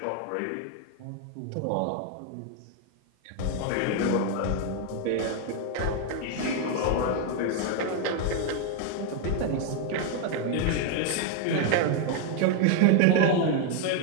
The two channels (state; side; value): different; both; correlation 0.01